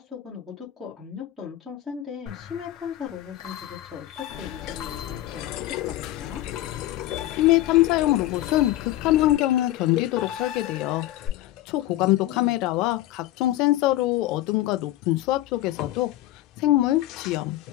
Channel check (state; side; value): quieter; right; 14.9 dB